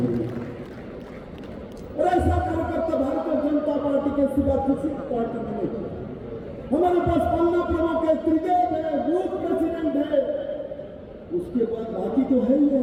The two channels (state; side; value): identical; both; correlation 1.00